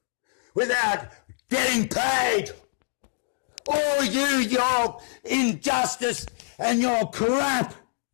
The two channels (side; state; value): right; silent; digital silence